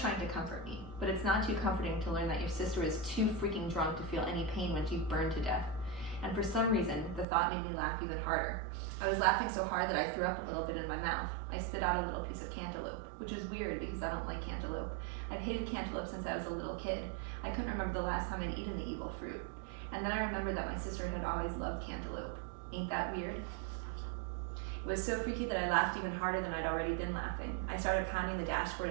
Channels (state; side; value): drops out; left; at 7.2 s